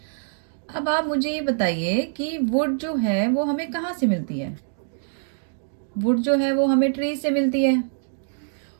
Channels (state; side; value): silent; left; digital silence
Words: अब आप मुझे ये बताइए कि वुड जो है वो हमें कहाँ से मिलती है? वुड जो है वो हमें ट्री से मिलती है।